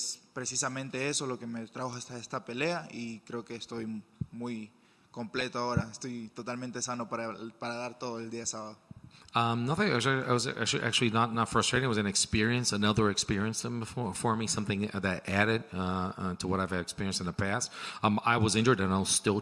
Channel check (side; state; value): both; identical; correlation 1.00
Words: precisamente eso lo que me trajo hasta esta pelea, y creo que estoy muy completo ahora. Estoy totalmente sano para dar todo el día sábado. Nothing. I was actually not frustrating. It was an experience, another experience for me, something that added to what I've experienced in the past. I was injured and I was still